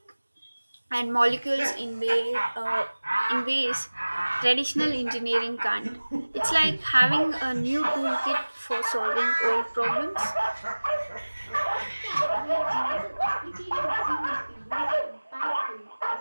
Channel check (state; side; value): inverted; both; correlation -1.00